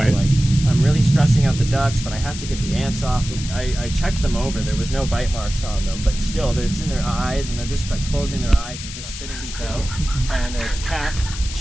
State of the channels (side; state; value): left; noise; hiss, 10 dB below the sound